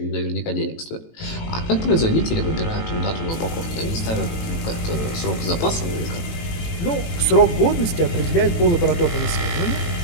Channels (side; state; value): right; late; 18 ms